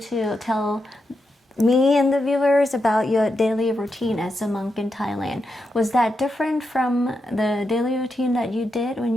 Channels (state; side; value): normal; both; correlation 0.86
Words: tell me and the viewers about your daily routine as a monk in Thailand. Was that different from the daily routine that you did when